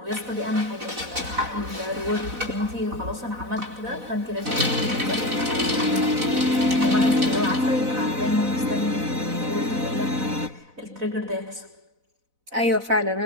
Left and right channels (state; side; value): late; left; 4.0 ms